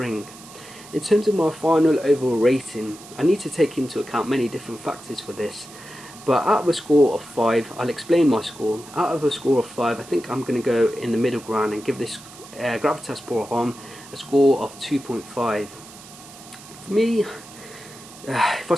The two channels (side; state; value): right; noise; hiss, 19 dB below the sound